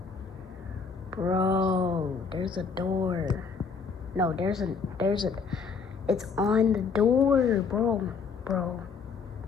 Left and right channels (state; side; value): quieter; right; 5.5 dB